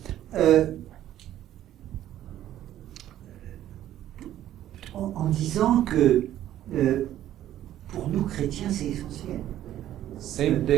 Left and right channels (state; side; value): quieter; left; 12.4 dB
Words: en disant que pour nous chrétiens c'est essentiel. sem